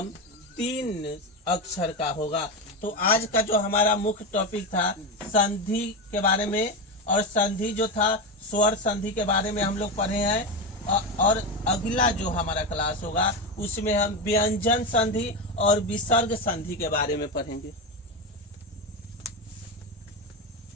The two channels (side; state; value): both; normal; correlation 0.15